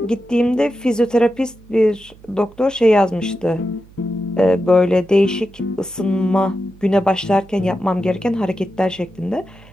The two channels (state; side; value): noise; right; hum, 24 dB below the sound